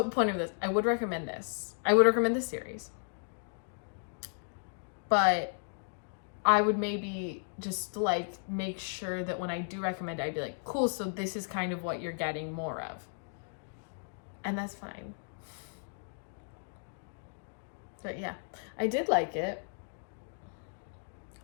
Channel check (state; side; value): silent; right; digital silence